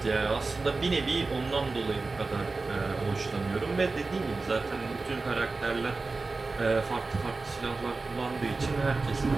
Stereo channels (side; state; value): left; quieter; 3.7 dB